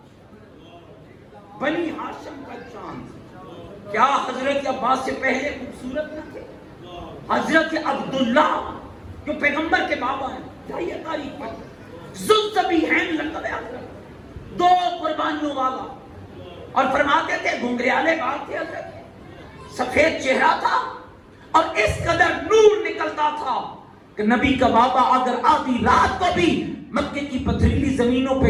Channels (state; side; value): identical; both; correlation 1.00